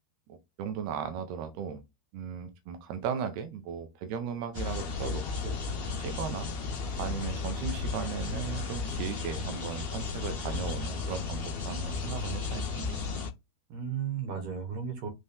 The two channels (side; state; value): left; late; 12 ms